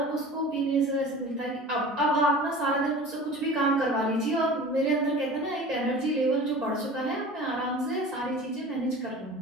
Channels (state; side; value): normal; both; correlation 0.39